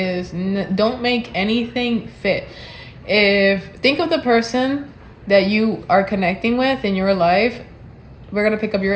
don't make anything fit. Think of the person that you are connecting with in your life. We're going to pick up your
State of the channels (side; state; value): both; identical; correlation 1.00